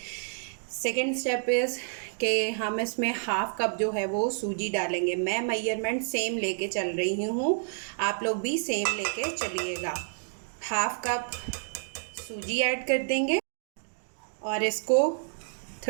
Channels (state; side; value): silent; left; digital silence